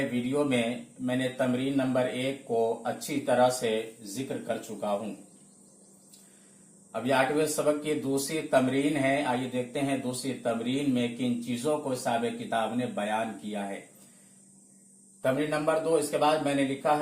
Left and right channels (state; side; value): identical; both; correlation 1.00